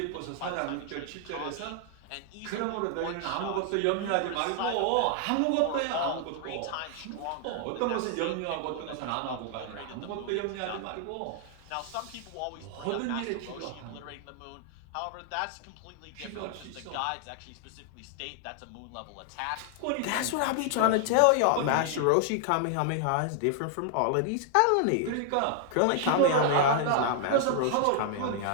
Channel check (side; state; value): both; different; correlation 0.00